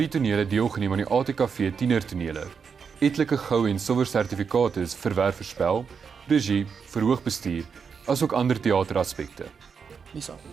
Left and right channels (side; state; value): left; quieter; 6.1 dB